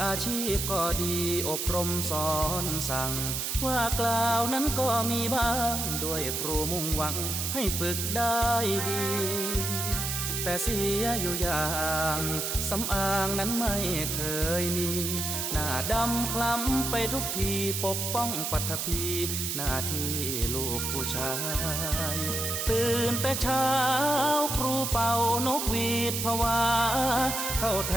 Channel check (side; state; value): right; noise; hiss, 2 dB below the sound